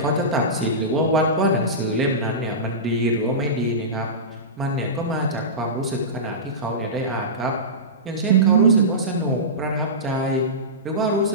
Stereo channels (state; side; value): normal; both; correlation -0.19